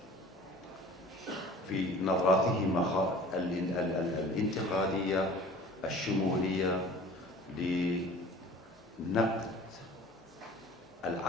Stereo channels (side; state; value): both; normal; correlation 0.45